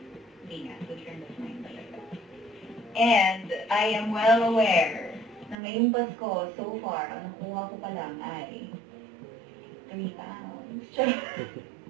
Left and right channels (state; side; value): drops out; left; at 5.6 s